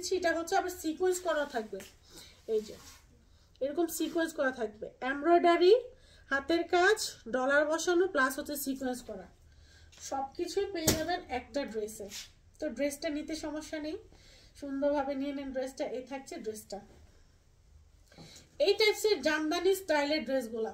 এটা হচ্ছে আবার সিকোয়েন্স করা থাকবে, এই যে এরকম সিকোয়েন্স করা থাকবে, এমব্রয়ডারি হাতের কাজ ডলার বসানো প্লাস হচ্ছে সিকোয়েন্স করা, সবকিছুই পেয়ে যাবেন একটা ড্রেসে। তো ড্রেসটা নিতে সমস্যা নেই, সুন্দরভাবে নিয়ে নেন ড্রেসটা। এই থাকছে ড্রেসটা। এই টাইপসের জামদানি স্টাইলের ড্রেসগুলা,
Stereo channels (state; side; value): identical; both; correlation 1.00